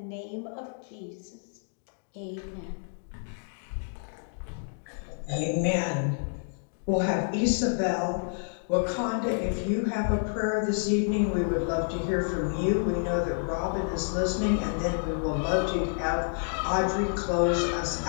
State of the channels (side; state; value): right; silent; digital silence